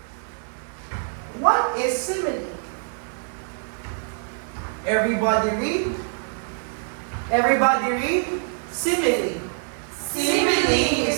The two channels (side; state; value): left; silent; 58 dB below the other